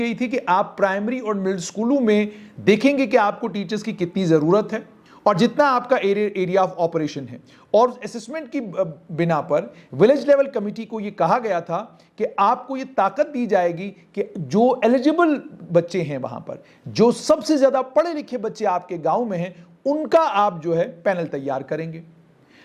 थी कि आप प्राइमरी और मिडिल स्कूलों में देखेंगे कि आपको टीचर्स की कितनी जरूरत है और जितना आपका एरिया ऑफ ऑपरेशन है। और असेसमेंट की बिना पर विलेज लेवल कमेटी को यह कहा गया था कि आपको यह ताकत दी जाएगी कि जो एलिजिबल बच्चे हैं वहां पर, जो सबसे ज्यादा पढ़े लिखे बच्चे आपके गांव में हैं, उनका आप जो है पैनल तैयार करेंगे।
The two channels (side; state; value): both; identical; correlation 1.00